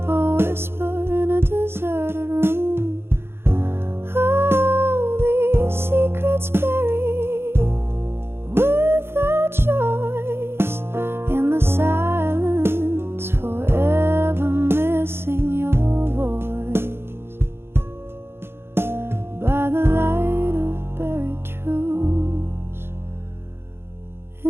a whisper in a deserted room. Oh, these secrets buried without choice in the silence, forever missing your voice. By the light of buried truths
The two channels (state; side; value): late; left; 0.11 ms